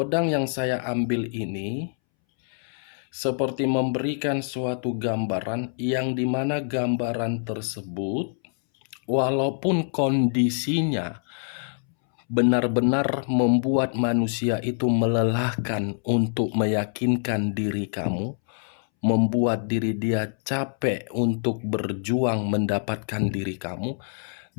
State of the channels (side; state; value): right; silent; 61 dB below the other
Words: yang saya ambil ini seperti memberikan suatu gambaran yang dimana gambaran tersebut walaupun kondisinya benar-benar membuat manusia itu melelahkan untuk meyakinkan diri kamu, membuat diri dia capek untuk berjuang mendapatkan diri kamu,